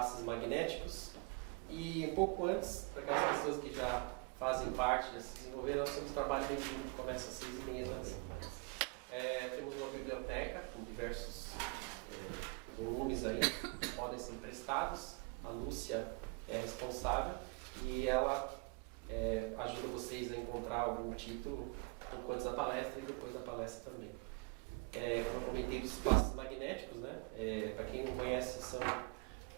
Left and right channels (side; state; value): left; quieter; 30.4 dB